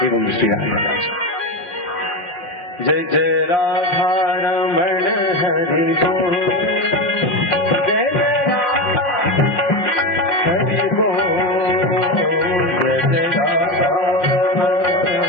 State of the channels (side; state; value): right; late; 5.7 ms